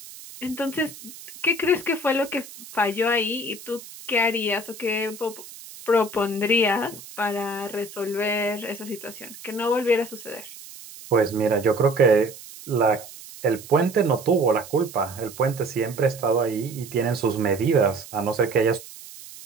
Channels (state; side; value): noise; right; hiss, 16 dB below the sound